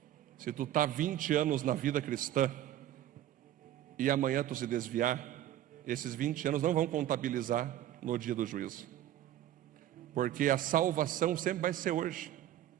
Se tu está 20 anos na vida cristã e amanhã tu se desviar, esses 20 anos não vão contabilizar no dia do juízo. Porque a salvação sempre vai ser hoje.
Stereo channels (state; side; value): quieter; left; 12.6 dB